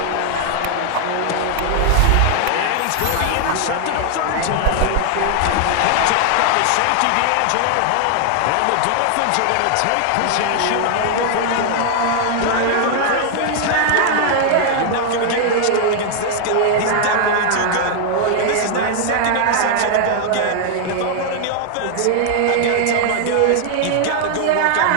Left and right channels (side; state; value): both; different; correlation 0.00